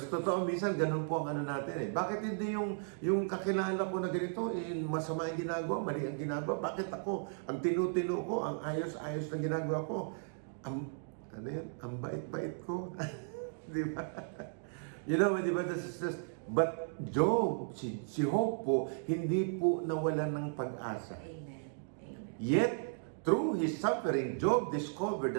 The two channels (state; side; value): silent; left; digital silence